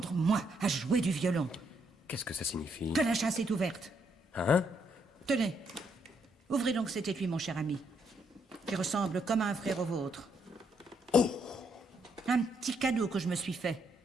moi, à jouer du violon. Qu'est-ce que ça signifie? Que la chasse est ouverte. Hein? Tenez, ouvrez donc cet étui, mon cher ami, qui ressemble comme un frère au vôtre. Oh! Un petit cadeau que je me suis fait.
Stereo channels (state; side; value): normal; both; correlation 0.74